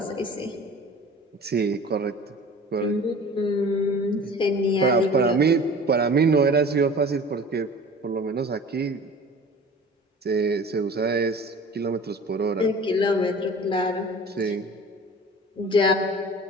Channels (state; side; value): normal; both; correlation 0.42